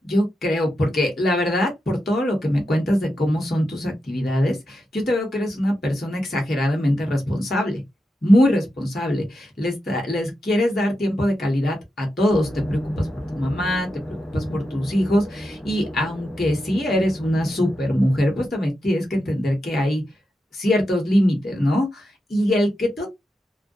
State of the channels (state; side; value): normal; both; correlation 0.88